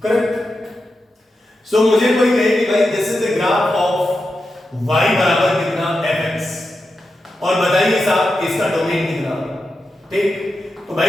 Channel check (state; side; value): normal; both; correlation 0.89